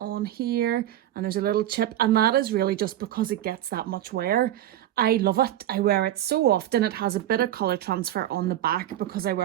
here, and there's a little chip, and that is really just because it gets that much wear. I love it. I wear it so often. It has a bit of colour transfer on the back because I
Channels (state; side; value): quieter; left; 12.7 dB